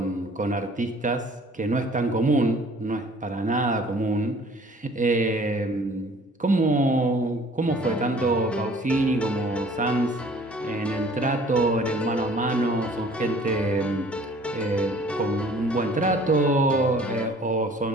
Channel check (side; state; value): both; normal; correlation 0.53